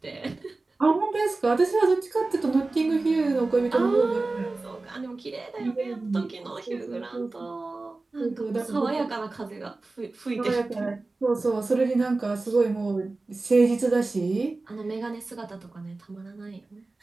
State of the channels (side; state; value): left; quieter; 3.4 dB